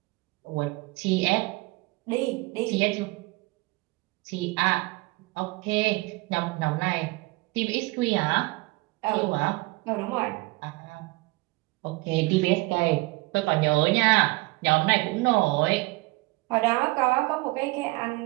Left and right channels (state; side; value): quieter; left; 23.4 dB